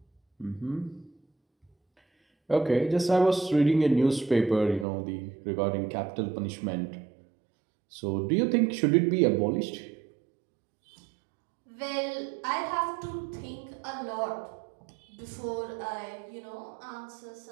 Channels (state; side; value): drops out; left; at 4.9 s